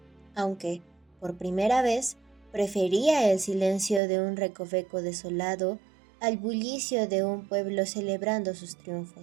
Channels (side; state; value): left; drops out; at 4.0 s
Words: aunque, por primera vez, prefería el silencio de un recoveco desolado al bullicio de un pueblo celebrando sus